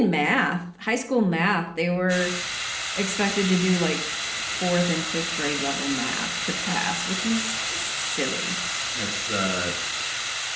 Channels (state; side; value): identical; both; correlation 1.00